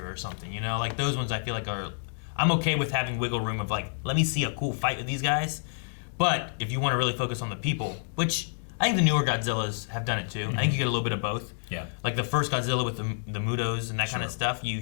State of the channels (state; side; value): silent; right; digital silence